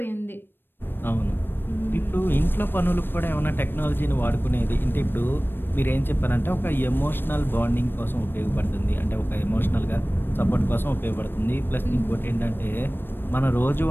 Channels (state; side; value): late; right; 0.097 ms